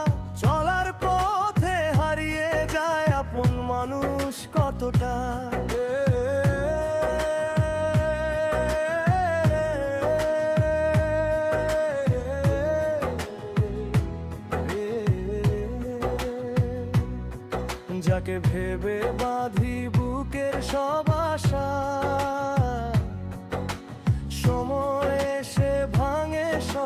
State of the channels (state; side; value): identical; both; correlation 1.00